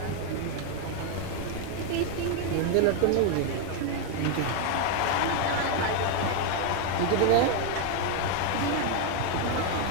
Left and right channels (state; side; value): different; both; correlation 0.01